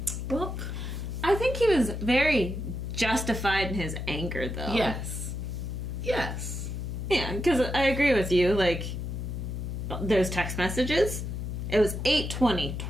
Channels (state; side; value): noise; left; hum, 4 dB below the sound